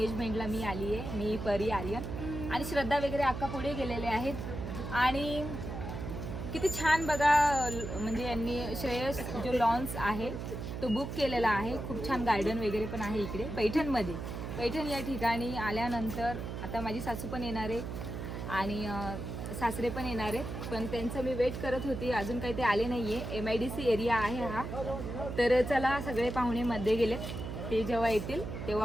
मी आली आहे. मी परी, आर्यन आणि श्रद्धा वगैरे अक्का पुढे गेलेले आहेत. आणि किती छान बघा, म्हणजे यांनी श्रेयस जो लॉन्स आहे तो बुक केलेला आहे. खूप छान गार्डन वगैरे पण आहे इकडे पैठणमध्ये. पैठण या ठिकाणी आल्यानंतर आता माझी सासू पण येणार आहे आणि सासरे पण येणार आहेत, पण त्यांचं मी वेट करत होती, अजून काही ते आले नाही आहे. MIDC एरिया आहे हा. तर चला, सगळे पाहुणे मध्ये गेलेत, ते जेव्हा येतील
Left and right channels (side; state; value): right; noise; hum, 6 dB below the sound